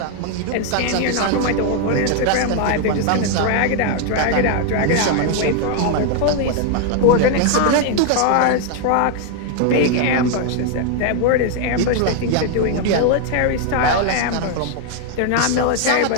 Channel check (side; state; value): both; different; correlation 0.00